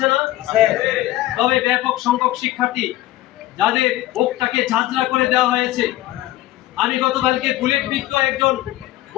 না? তবে ব্যাপক সংখ্যক শিক্ষার্থী যাদের বুকটাকে ঝাঁঝরা করে দেওয়া হয়েছে। আমি গতকালকে বুলেট বিদ্ধ একজন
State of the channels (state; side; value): quieter; right; 16.0 dB